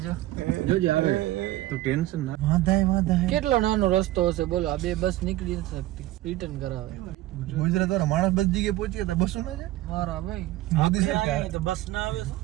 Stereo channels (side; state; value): left; quieter; 16.2 dB